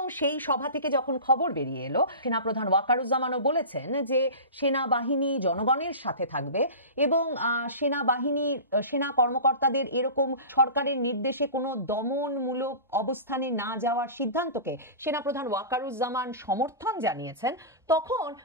সেই সভা থেকে যখন খবর বেরিয়ে এলো, সেনাপ্রধান ওয়াকারুজ্জামানও বলেছেন যে সেনাবাহিনী জনগণের সাথে থাকবে এবং সেনা কর্মকর্তাদের এরকম সরকারের নির্দেশে কোনো দমনমূলক অবস্থানে না যাওয়ার সিদ্ধান্তকে সেনাপ্রধান ওয়াকারুজ্জামান সমর্থন জানিয়েছেন। তখন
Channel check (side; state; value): both; inverted; correlation -0.32